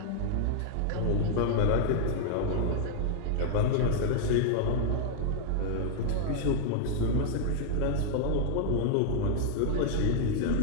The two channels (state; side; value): different; both; correlation 0.00